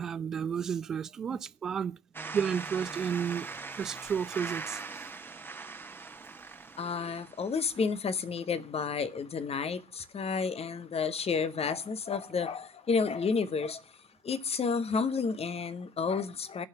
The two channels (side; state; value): both; normal; correlation 0.55